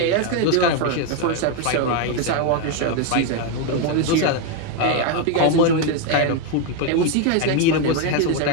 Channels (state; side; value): different; both; correlation 0.02